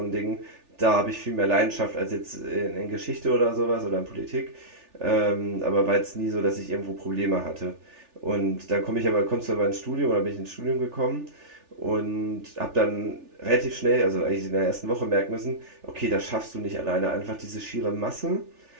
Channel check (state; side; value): late; left; 3.4 ms